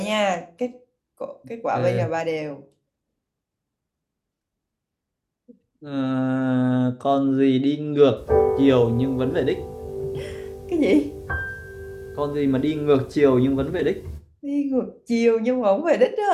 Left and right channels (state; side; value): identical; both; correlation 1.00